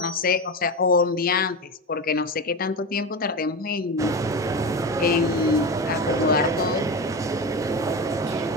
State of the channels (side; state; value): both; normal; correlation 0.22